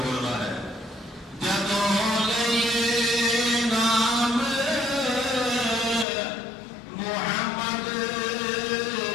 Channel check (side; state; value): right; drops out; at 6.1 s